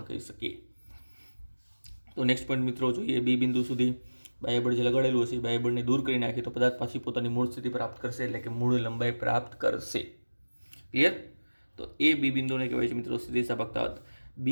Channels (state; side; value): inverted; both; correlation -1.00